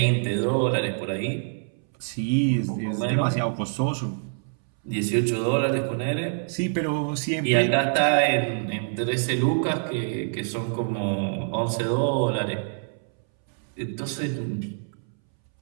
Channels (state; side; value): silent; left; 61 dB below the other